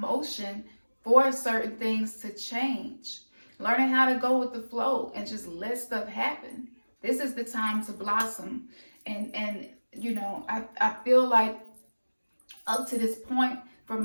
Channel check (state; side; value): inverted; both; correlation -1.00